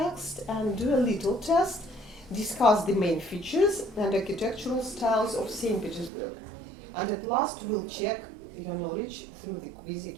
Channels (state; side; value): drops out; left; at 6.1 s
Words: and do a little test, discuss the main features and architectural styles of St. Petersburg. And at last we'll check your knowledge through the quiz